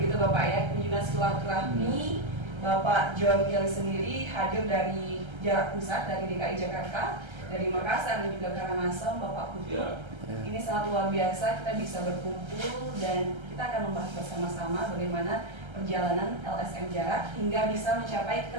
Bapak ya, kunjungan silaturahmi. Bapak John Kelly sendiri hadir dari jarak pusat, dari DKI Jakarta, dari Makassar dan juga Karangasem, Bapak Putu. Ini sangat luar biasa, kita bisa berkumpul dan kita akan membahas bersama-sama bagaimana perjalanan LSM Jarak hingga bisa mencapai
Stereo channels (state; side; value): late; left; 1.3 ms